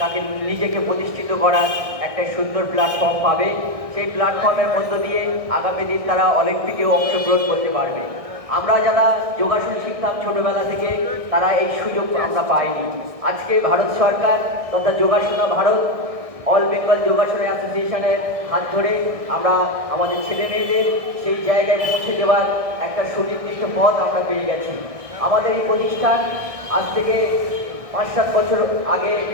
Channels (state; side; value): late; left; 1.6 ms